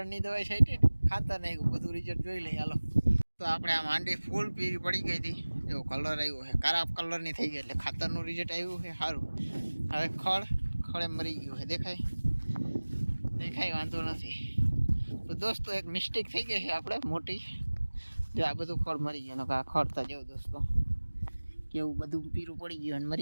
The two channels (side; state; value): both; inverted; correlation -1.00